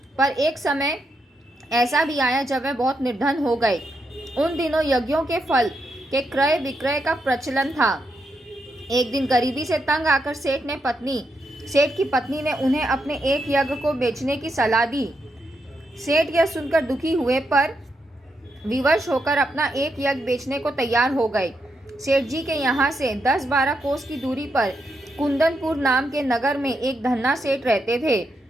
पर एक समय ऐसा भी आया जब वह बहुत निर्धन हो गए। उन दिनों यज्ञों के फल के क्रय विक्रय का प्रचलन था। एक दिन गरीबी से तंग आकर सेठ की पत्नी ने उन्हें अपने एक यज्ञ को बेचने की सलाह दी। सेठ यह सुनकर दुखी हुए, पर विवश होकर अपना एक यज्ञ बेचने को तैयार हो गए। सेठ जी के यहाँ से 10-12 कोस की दूरी पर कुंदनपुर नाम के नगर में एक धन्ना सेठ रहते थे।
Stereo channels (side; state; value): both; normal; correlation 0.82